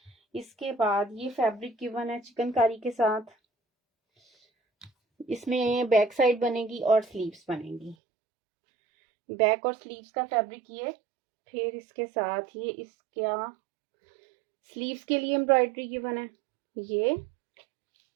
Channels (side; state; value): left; drops out; at 8.0 s